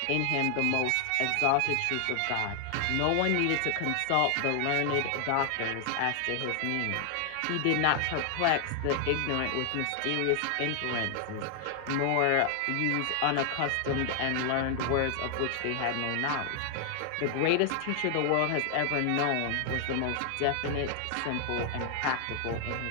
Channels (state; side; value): different; both; correlation 0.00